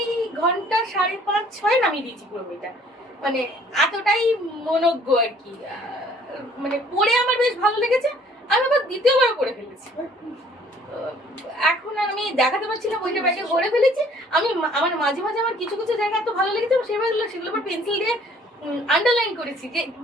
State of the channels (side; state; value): both; normal; correlation 0.57